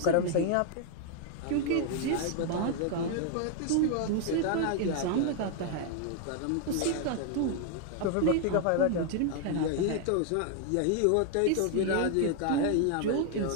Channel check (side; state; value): both; different; correlation 0.00